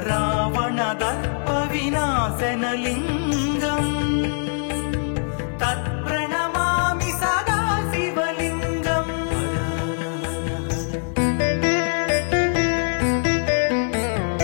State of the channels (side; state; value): right; silent; 64 dB below the other